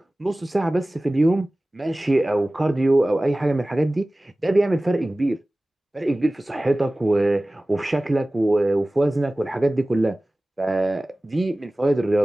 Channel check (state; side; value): normal; both; correlation 0.98